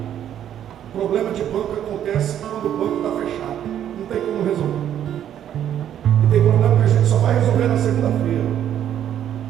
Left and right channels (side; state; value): left; quieter; 10.4 dB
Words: problema de banco acontece quando o banco está fechado. Não tem como resolver. E tem problema que a gente só vai resolver na segunda-feira.